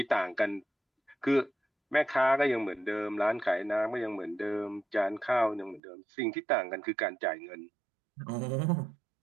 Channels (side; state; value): left; drops out; at 5.8 s